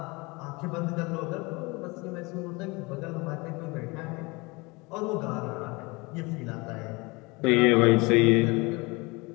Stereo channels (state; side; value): quieter; right; 25.7 dB